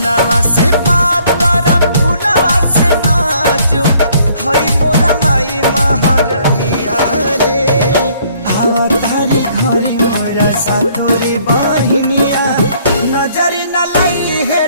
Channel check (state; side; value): inverted; both; correlation -0.63